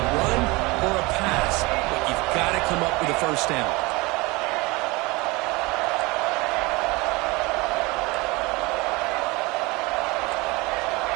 or a pass, but you've got to come up with a 1st down.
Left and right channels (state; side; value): quieter; left; 24.1 dB